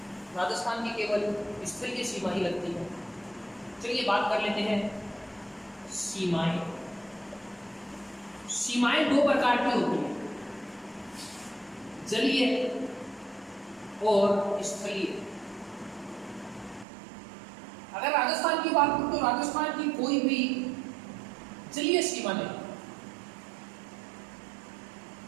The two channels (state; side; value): drops out; left; at 16.9 s